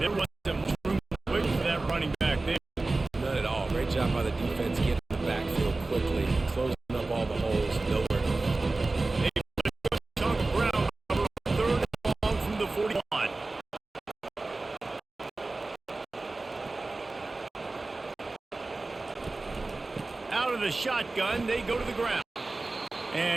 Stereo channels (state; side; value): quieter; left; 3.3 dB